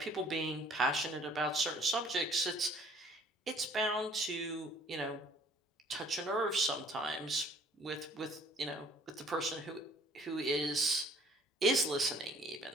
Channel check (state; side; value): normal; both; correlation 0.56